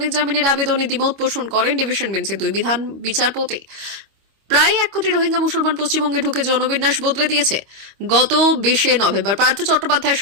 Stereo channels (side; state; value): left; late; 25 ms